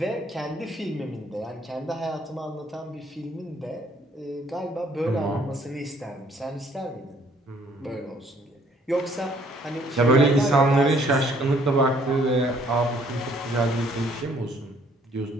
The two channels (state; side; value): normal; both; correlation 0.63